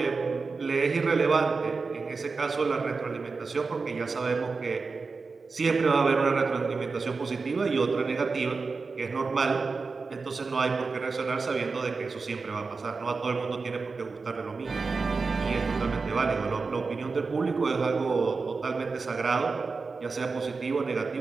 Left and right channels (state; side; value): quieter; left; 4.4 dB